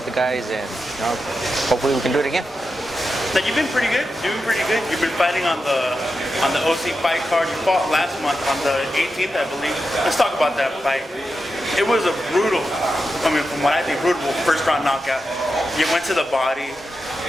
the guys, and hopefully we can do it again. Now you've been pretty good, doing pretty good. You've been fighting on the OC fight card. You fought last month on the 18th, I believe. Let's talk about that fight. It was a brutal, from what I think, brutal first round knockout. You went to the body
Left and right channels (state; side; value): normal; both; correlation 0.89